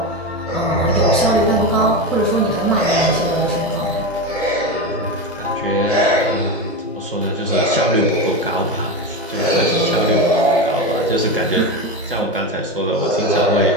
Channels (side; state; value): both; normal; correlation 0.18